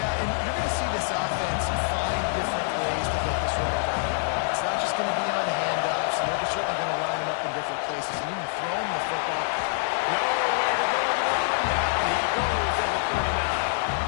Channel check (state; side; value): silent; right; 61 dB below the other